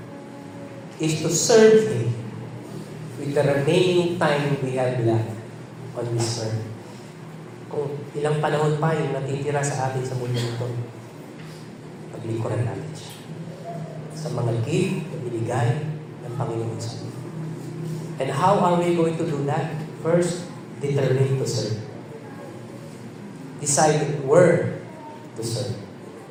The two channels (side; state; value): both; identical; correlation 1.00